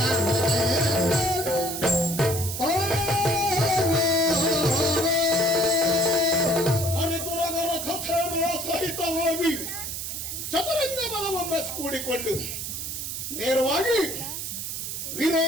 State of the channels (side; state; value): right; noise; hiss, 5 dB below the sound